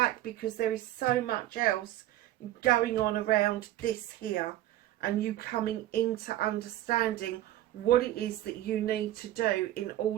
because there is so much else going on around this here, and you coming into understanding what it is that you need to do in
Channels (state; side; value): quieter; left; 14.1 dB